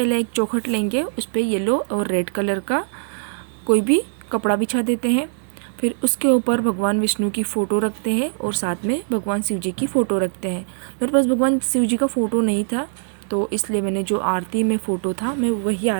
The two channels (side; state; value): left; silent; digital silence